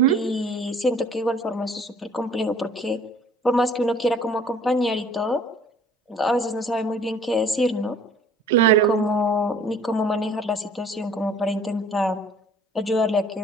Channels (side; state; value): both; normal; correlation 0.52